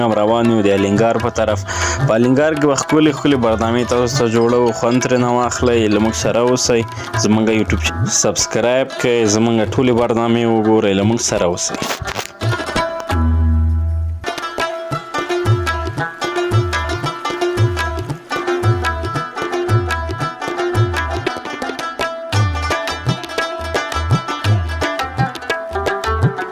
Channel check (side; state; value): both; identical; correlation 1.00